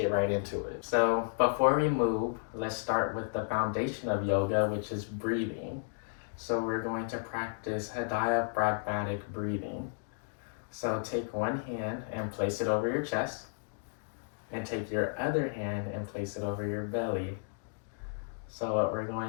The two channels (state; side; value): silent; right; digital silence